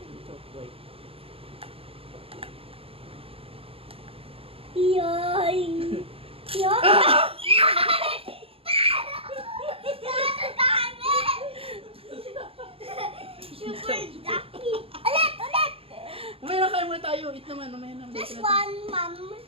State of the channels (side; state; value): left; late; 0.27 ms